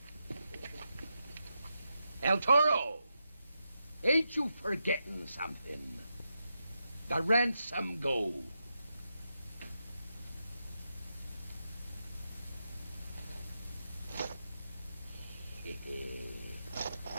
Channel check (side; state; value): both; inverted; correlation -0.86